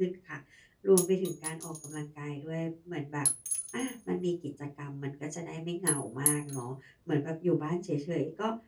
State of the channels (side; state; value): both; identical; correlation 1.00